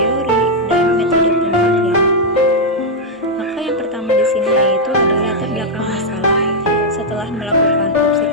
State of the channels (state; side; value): normal; both; correlation -0.02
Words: dan metode penelitian. Maka yang pertama di sini yaitu adalah latar belakang masalah. Setelah melakukan